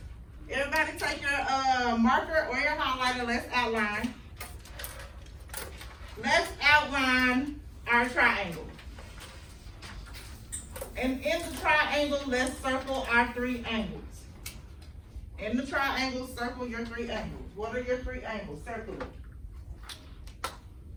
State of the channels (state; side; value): identical; both; correlation 1.00